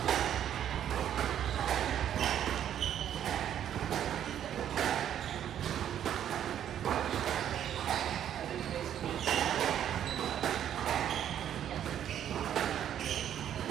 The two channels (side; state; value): left; quieter; 10.1 dB